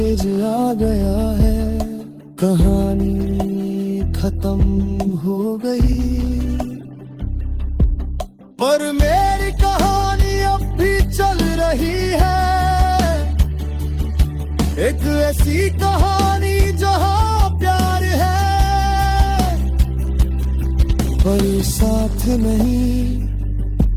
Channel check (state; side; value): identical; both; correlation 1.00